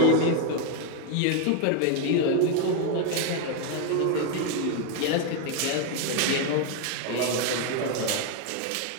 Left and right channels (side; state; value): both; different; correlation 0.01